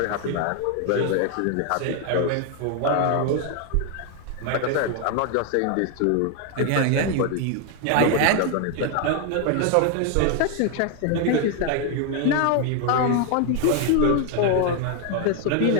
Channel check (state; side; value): different; both; correlation 0.01